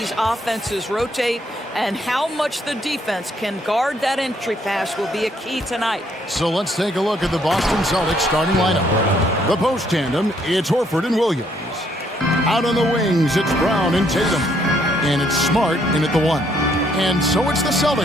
offenses rotate, and how much the defense can guard that entry pass will be a key tonight. So let's take a look at the Boston Celtics starting lineup. The post tandem, it's Horford and Williams. Out on the wings, it's Brown and Tatum. And it's Smart in at the 1. And so it's the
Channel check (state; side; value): normal; both; correlation 0.69